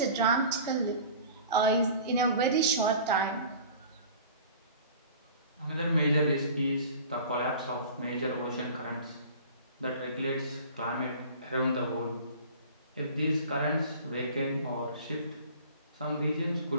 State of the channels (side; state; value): both; inverted; correlation -0.43